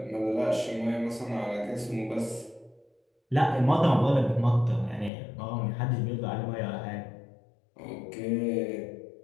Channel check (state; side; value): drops out; right; at 5.1 s